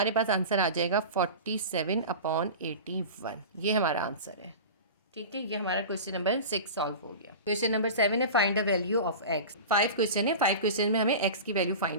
पास आंसर आ जाएगा 47/81। ये हमारा आंसर है। ठीक है, ये हमारा क्वेश्चन नंबर 6 सॉल्व हो गया। क्वेश्चन नंबर 7 है, find the value of x। 5 question है, 5 क्वेश्चन में हमें x की वैल्यू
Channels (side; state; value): both; inverted; correlation -0.31